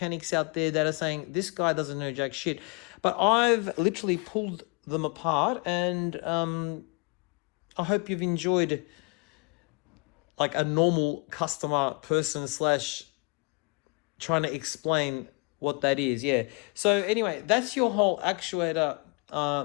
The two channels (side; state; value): right; quieter; 31.6 dB